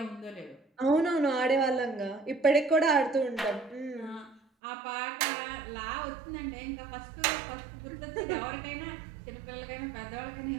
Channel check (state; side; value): drops out; left; at 4.4 s